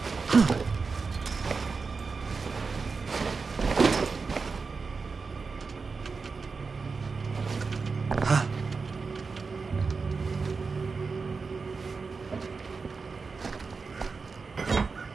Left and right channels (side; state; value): left; quieter; 4.6 dB